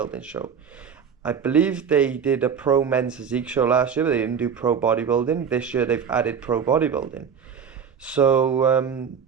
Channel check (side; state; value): left; quieter; 7.1 dB